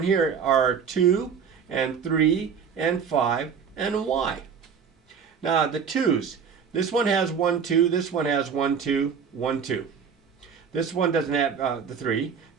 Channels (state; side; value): quieter; left; 6.7 dB